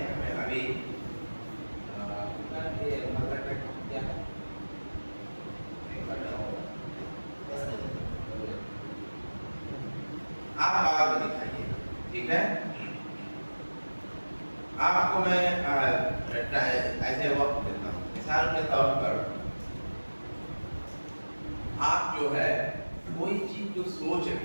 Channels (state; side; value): inverted; both; correlation -1.00